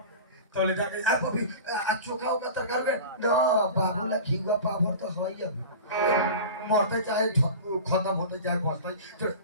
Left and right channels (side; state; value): both; inverted; correlation -0.34